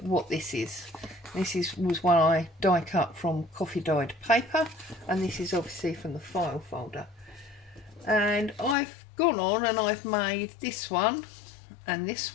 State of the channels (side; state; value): right; drops out; at 8.8 s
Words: what this is. Was one I die cut from coffee dyed paper, and this is obviously from the file folder. And I've gone on and I've made this one and this